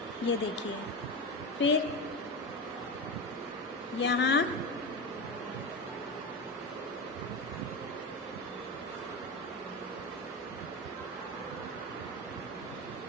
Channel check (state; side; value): noise; right; hum, 28 dB below the sound